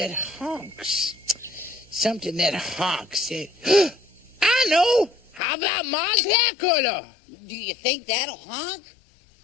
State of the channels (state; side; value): drops out; right; at 5.4 s